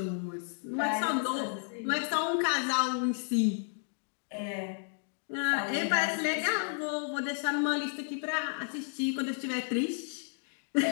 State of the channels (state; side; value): silent; right; 56 dB below the other